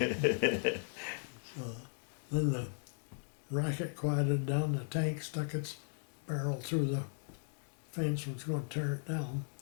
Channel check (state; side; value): silent; right; digital silence